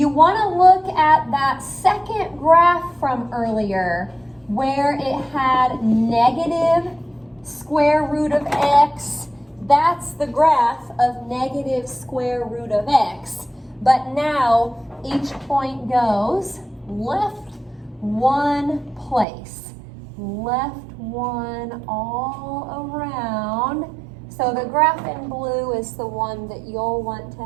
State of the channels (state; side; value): drops out; left; at 19.2 s